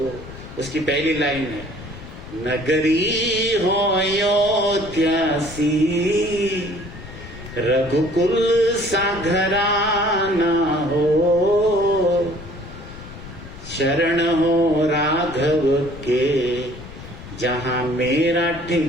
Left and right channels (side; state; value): left; noise; rumble, 14 dB below the sound